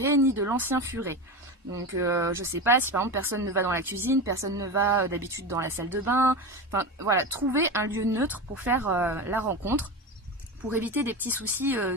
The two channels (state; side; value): normal; both; correlation 0.22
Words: ni de l'ancien furet. Donc je sais pas, si par exemple personne ne va dans la cuisine, personne ne va d'habitude dans la salle de bain, enfin voilà, trouver un lieu neutre pour faire la rencontre, pour éviter des petits soucis